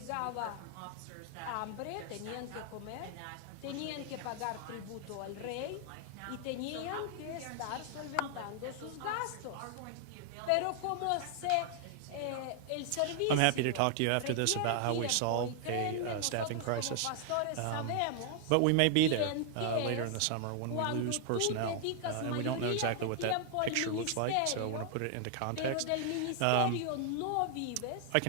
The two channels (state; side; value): different; both; correlation 0.00